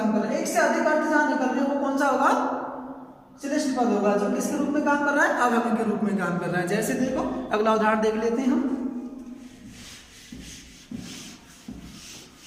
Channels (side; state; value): both; identical; correlation 1.00